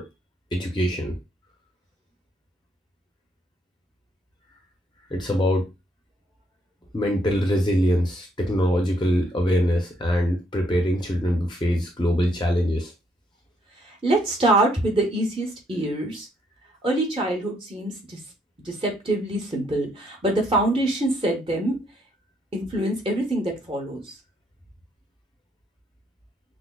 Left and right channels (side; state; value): both; normal; correlation 0.71